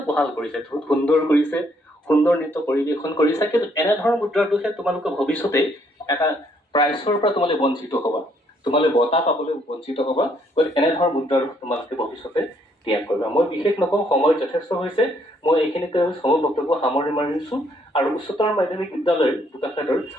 ভাল কৰিছে, বহুত সুন্দৰ কৰিছে, সুন্দৰ নৃত্য পৰিৱেশন কৰিছা, কিন্তু এনেধৰণৰ মুদ্ৰাটোহে তোমালোকে ভৱিষ্যতে এটা প্ৰাইজৰ পৰা তোমালোকে বঞ্চিত হ'বা, তোমালোকে বঁটা পাবলৈ বঞ্চিত হ'বা। গতিকে এনেধৰণৰ মুদ্ৰাৰ তোমালোকে ভৱিষ্যতে ত্যাগ কৰিবা। মই বিশেষ নকওঁ, সময় যথেষ্ট হৈছে। মই এইখিনিতে সময় বক্তব্য সামৰি মাৰিছো আৰু উচ্চতৰ মাধ্যমিক বিদ্যালয়ৰ বোকাখাতৰ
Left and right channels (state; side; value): normal; both; correlation 0.69